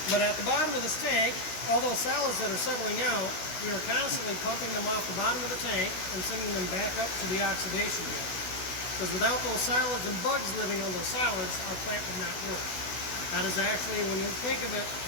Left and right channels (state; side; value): late; right; 16 ms